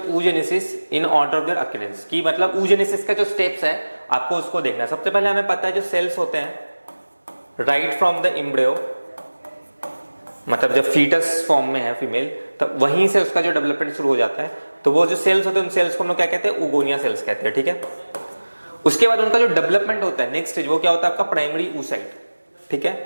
oogenesis in order of their occurrence. की मतलब oogenesis का जो स्टेप्स है आपको उसको देखना है। सबसे पहले हमें पता है जो सेल्स होते हैं राइट फ्रॉम द एम्ब्रियो, मतलब जब फीटस फॉर्म में है फीमेल, तब वहीं से उसका जो डेवलपमेंट शुरू हो जाता है, तो वो जो सेल्स होते हैं उन सेल्स को हम लोग क्या कहते हैं? ओगोनिया सेल्स कहते हैं, ठीक है। उसके बाद उनका जो डेवलपमेंट होता है नेक्स्ट स्टेज, वो क्या होता है आपका? प्राइमरी oocyte, ठीक है।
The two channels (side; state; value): both; inverted; correlation -1.00